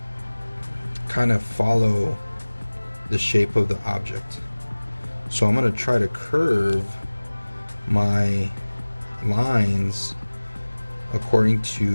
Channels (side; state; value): both; inverted; correlation -1.00